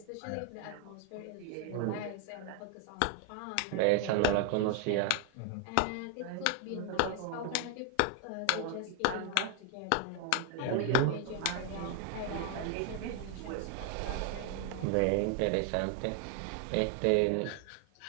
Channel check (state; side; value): different; both; correlation 0.01